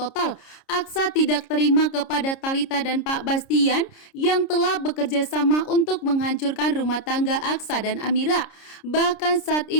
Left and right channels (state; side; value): late; right; 30 ms